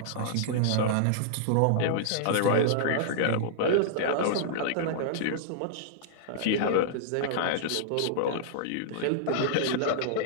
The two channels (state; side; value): different; both; correlation -0.02